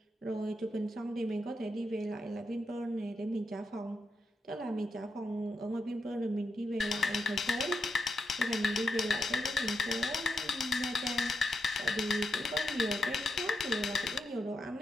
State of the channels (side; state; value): both; normal; correlation 0.85